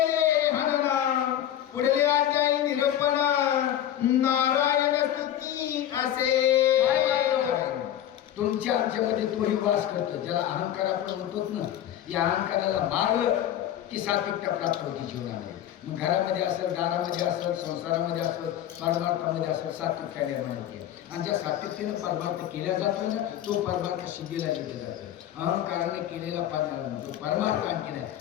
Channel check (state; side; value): quieter; right; 11.4 dB